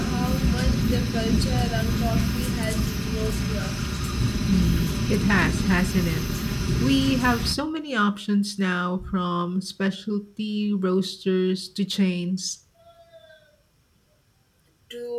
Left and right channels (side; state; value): both; identical; correlation 1.00